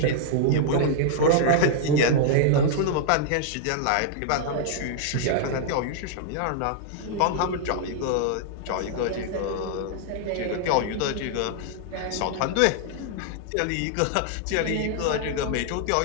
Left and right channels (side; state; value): both; different; correlation -0.01